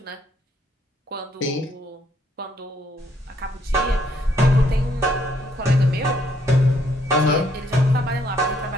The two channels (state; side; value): normal; both; correlation 0.70